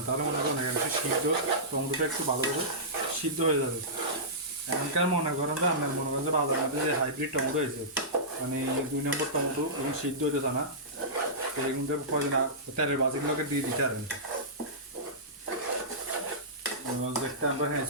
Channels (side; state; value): both; normal; correlation -0.18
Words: তাহলে মনে করেন একটু সিদ্ধ, টমেটোটা একটু ভালোভাবে সিদ্ধ হয়ে যাবে। এখনকার মনে করেন যে আপনার মনে করেন যে বাজার মধ্যে যে হাইব্রিড টমেটো হয়েছে, মানে 2 নম্বর টমেটো এবং সিদ্ধ হইতেছে না, তো এগুলো কদিন তেলের বাজিগুলোকে দিয়ে দিতে পারেন। দেখতে আমরা হ্যাঁ